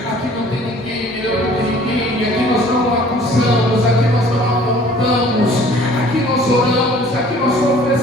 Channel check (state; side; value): normal; both; correlation 0.52